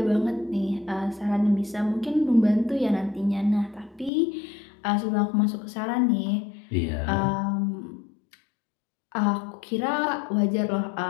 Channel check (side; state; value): right; drops out; at 4.1 s